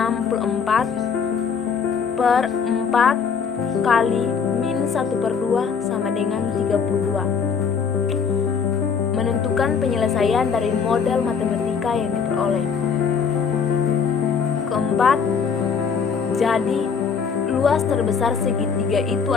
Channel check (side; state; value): right; quieter; 6.1 dB